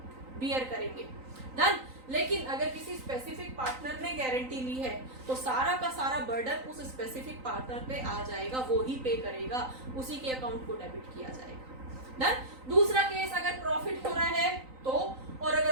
बियर करेंगे, डन। लेकिन अगर किसी स्पेसिफिक पार्टनर ने गारंटी ली है तो सारा का सारा बर्डन उस स्पेसिफिक पार्टनर पे आ जाएगा, वो ही पे करेगा, उसी के अकाउंट को डेबिट किया जाएगा, डन। दूसरा केस, अगर प्रॉफिट हो रहा है तो, और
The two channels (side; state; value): left; late; 3.9 ms